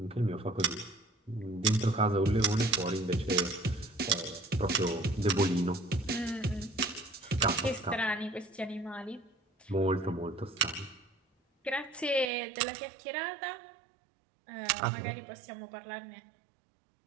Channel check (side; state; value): left; drops out; at 12.3 s